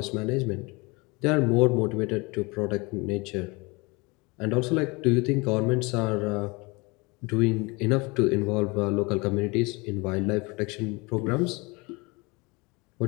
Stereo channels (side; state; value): right; quieter; 26.6 dB